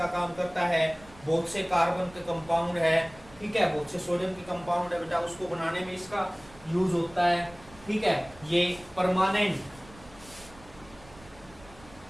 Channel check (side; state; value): right; noise; rumble, 22 dB below the sound